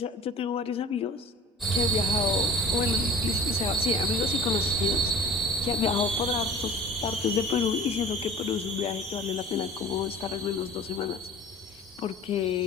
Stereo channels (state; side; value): normal; both; correlation 0.44